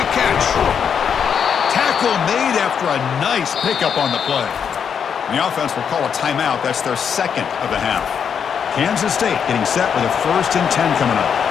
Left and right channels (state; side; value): quieter; right; 7.3 dB